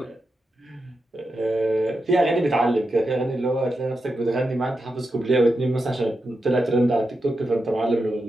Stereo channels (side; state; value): both; normal; correlation 0.88